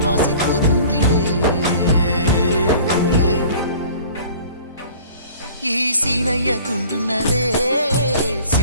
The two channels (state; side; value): inverted; both; correlation -0.47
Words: ఈ సీనయ్య గుంటున్నదే